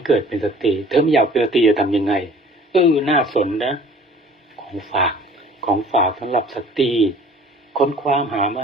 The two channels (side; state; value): both; normal; correlation 0.50